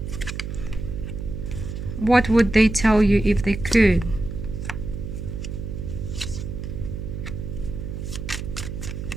What would they tell you if they could?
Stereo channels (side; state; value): right; noise; hum, 6 dB below the sound